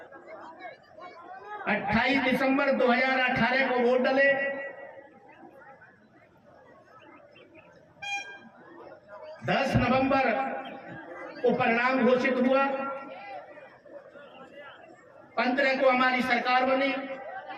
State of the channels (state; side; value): identical; both; correlation 1.00